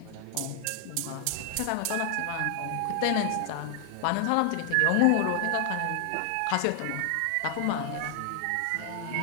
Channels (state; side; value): different; both; correlation 0.00